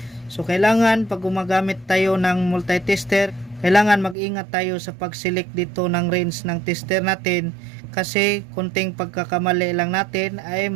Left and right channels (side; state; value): left; drops out; at 4.2 s